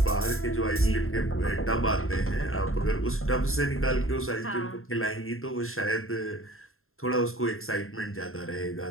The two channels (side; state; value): right; late; 0.61 ms